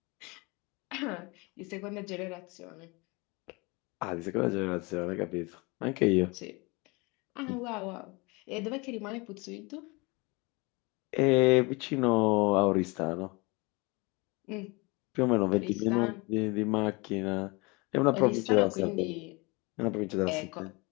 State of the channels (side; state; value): right; quieter; 26.8 dB